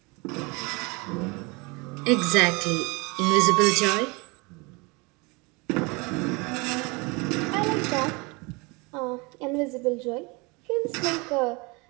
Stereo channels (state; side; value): quieter; left; 27.3 dB